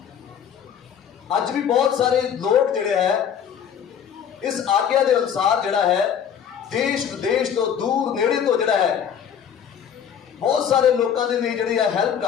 अज भी बहुत सारे लोग जिहड़े है इस आज्ञा के अनुसार जिहड़ा है देश विदेश तो दूर नेड़े तो जिहड़ा है बहुत सारे लोगों के लिए जिहड़ी है हेल्प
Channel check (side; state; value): right; quieter; 8.3 dB